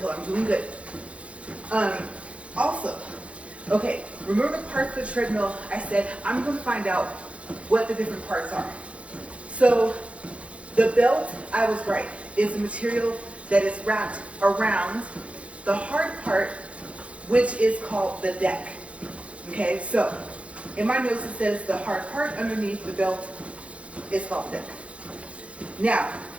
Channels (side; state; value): left; late; 0.062 ms